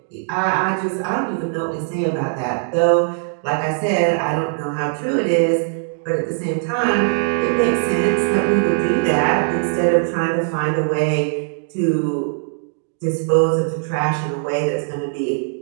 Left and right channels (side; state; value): left; silent; 66 dB below the other